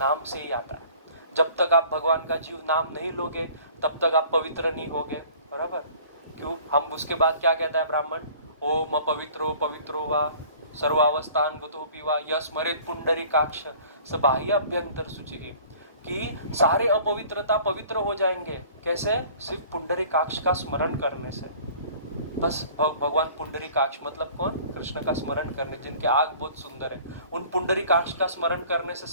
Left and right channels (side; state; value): both; inverted; correlation -0.50